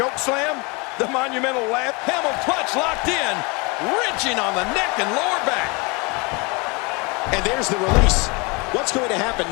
slam, the monumental lap, Hamel clutch locked in, wrenching on the neck and lower back. And there's the release. What's going to happen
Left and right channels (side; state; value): right; quieter; 28.8 dB